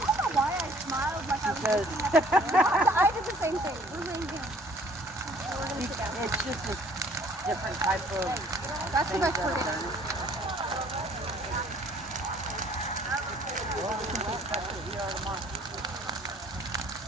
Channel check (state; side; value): normal; both; correlation 0.56